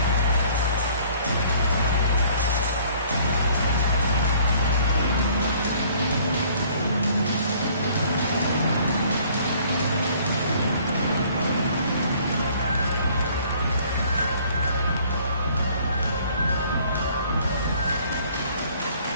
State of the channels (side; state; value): both; inverted; correlation -0.57